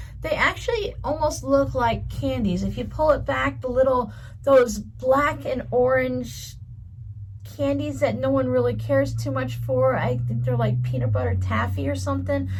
They actually almost look like candies. If you pull it back, those black and orange candies that no one really cares too much for, I think they're like peanut butter taffy or something,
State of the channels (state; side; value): identical; both; correlation 1.00